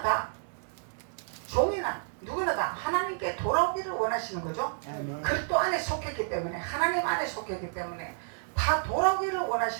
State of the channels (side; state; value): left; silent; digital silence